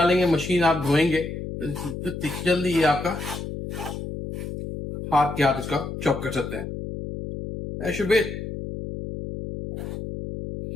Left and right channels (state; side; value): noise; left; hum, 7 dB below the sound